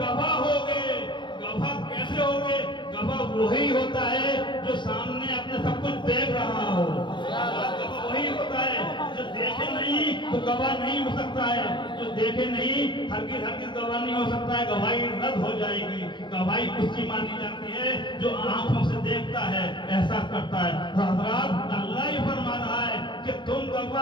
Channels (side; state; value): right; late; 0.23 ms